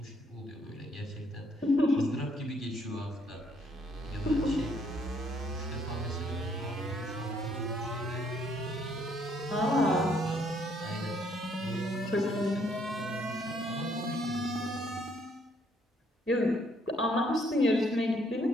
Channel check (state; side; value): normal; both; correlation 0.68